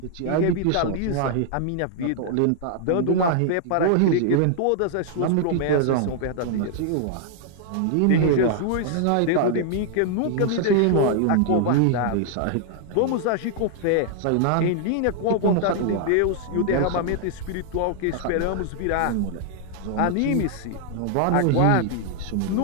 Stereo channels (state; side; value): different; both; correlation -0.01